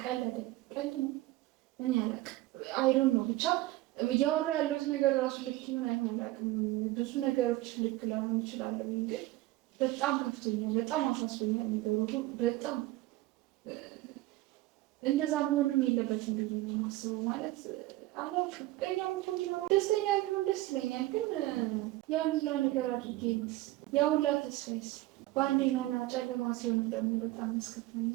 ቀለደ። ቀልድ ነው እኔ አላውቅም። አይዶን ነው ብቻ እያወራ ያለሁት ነገር ራሱ ልክ ይሁን አይሆን አላውቅም። ብዙ ነገሮች ልክ ላይሆን ይችላል። ግን በጣም ከፍቶኛል፣ በጣም አሳስቦኛል ነገሩ። በጣም እንደዛ መሆንም የለበትም ብዬ ነው የማስበው። ማለት አላውቅም። ፍቅረኛው እንኳን ደስተኛ ቢሆን ደስ ይለኛል። ግን ያን ሁላ ነገር አድርጌ ያ ሁላ ተስፋዬስ በአንዴ መና ጨለማ ሲሆን ደግሞ በጣም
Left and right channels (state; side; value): quieter; left; 17.6 dB